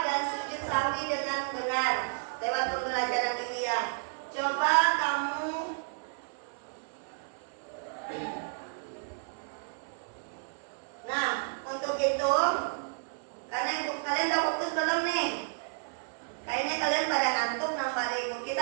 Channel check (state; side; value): silent; left; 57 dB below the other